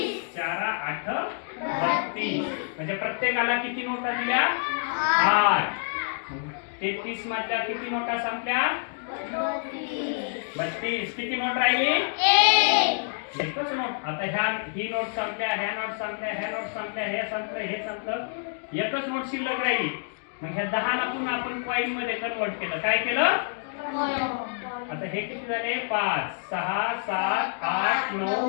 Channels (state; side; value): silent; right; digital silence